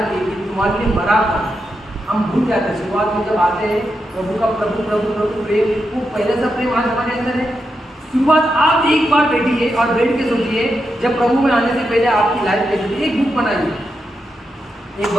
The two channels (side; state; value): both; normal; correlation 0.86